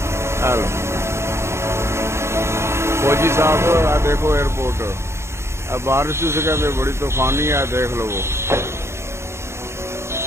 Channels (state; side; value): late; left; 0.13 ms